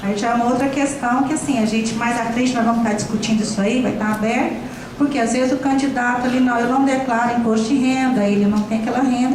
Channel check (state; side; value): identical; both; correlation 1.00